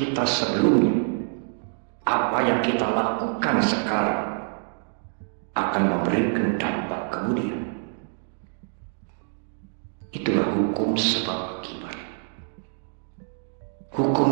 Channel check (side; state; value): left; silent; 57 dB below the other